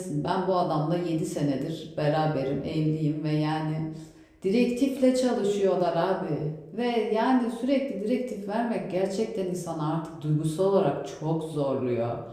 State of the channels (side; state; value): both; identical; correlation 1.00